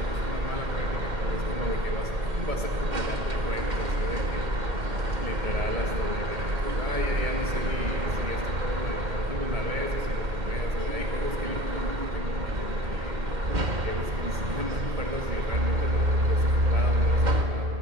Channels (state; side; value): late; left; 2.1 ms